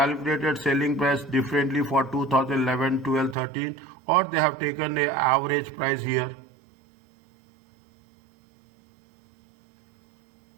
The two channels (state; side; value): drops out; left; at 3.4 s